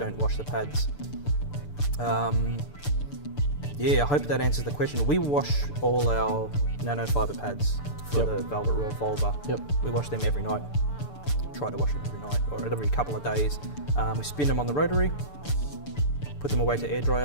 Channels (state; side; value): late; right; 6.9 ms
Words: wash the pads. I hope that answers the question. We wash all our nanofiber pads for the Velvet Revolver. We wash them every night. Try to wash them every night or every couple of days. We spin them on the rotary, put them away to air dry